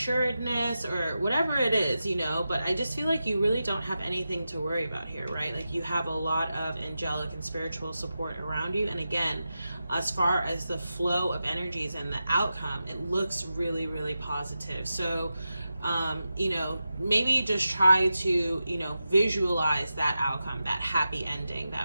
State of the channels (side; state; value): both; inverted; correlation -0.91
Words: or whatever it is, you know, but I just feel like you really don't have anything to worry about here, right? Like you have a lot of angelic and spiritual support around you. And again, as far as the flow of energies and the outcome, it looks really, really positive. So, you know, maybe just try to, you know, visualize that outcome, that happy ending